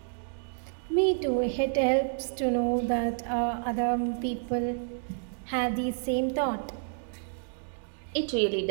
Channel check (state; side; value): silent; left; digital silence